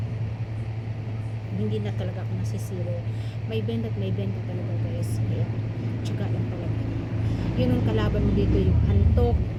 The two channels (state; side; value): identical; both; correlation 1.00